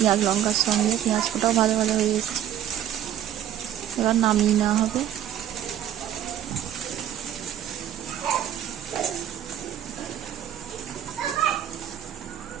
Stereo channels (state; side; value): quieter; left; 10.5 dB